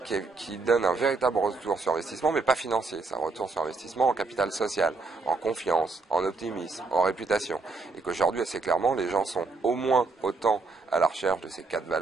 qui donne un véritable retour sur investissement, mais pas financier. C'est un retour sur investissement en capital social, en confiance, en optimisme, en réputation. Et qu'aujourd'hui, assez clairement, les gens sont au moins autant à la recherche de ces 4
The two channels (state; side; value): quieter; left; 3.9 dB